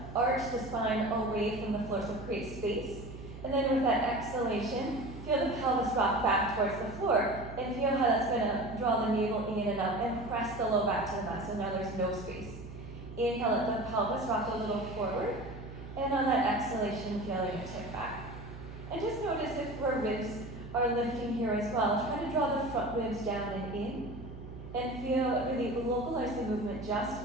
arch the spine away from the floor, so create space. And then with that exhalation, feel the pelvis rock back towards the floor, and feel how that's going to draw the navel in and up and press the low back to the mat, so now there's no space. Inhale, let the pelvis rock a little forward, and on that exhalation, feel it tip back. And just notice if our ribs are lifting here as well. Try to draw the front ribs down and in, and feel really localize the movement just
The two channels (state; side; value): noise; right; hum, 12 dB below the sound